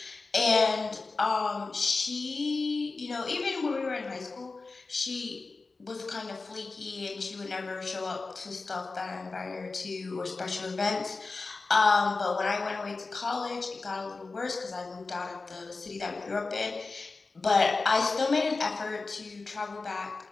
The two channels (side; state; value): right; quieter; 3.8 dB